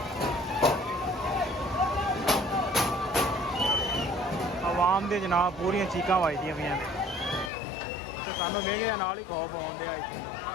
ਆਵਾਮ ਦੇ ਜਨਾਬ ਪੂਰੀਆਂ ਚੀਕਾਂ ਵੱਜਦੀਆਂ ਪਈਆਂ ਨੇ ਤੇ ਸਾਨੂੰ ਵੇਖਦੇ ਨਾਲ ਹੀ ਖੌਫ ਆਉਂਦੇ ਆ। ਇੱਥੇ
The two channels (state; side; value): drops out; right; at 7.5 s